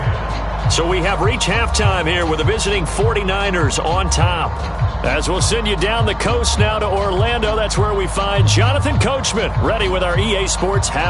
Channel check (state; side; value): identical; both; correlation 1.00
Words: So we have reached halftime here with the visiting 49ers on top. As we'll send you down the coast now to Orlando, that's where we find Jonathan Coachman, ready with our EA Sports